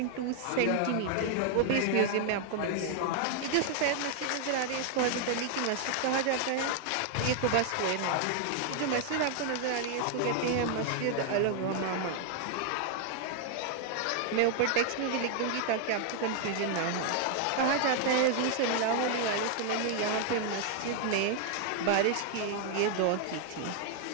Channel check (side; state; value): both; different; correlation 0.00